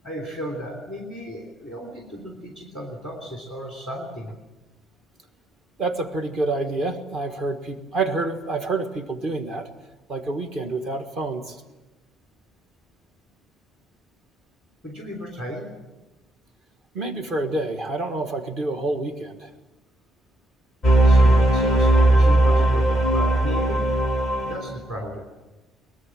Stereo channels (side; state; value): both; normal; correlation 0.77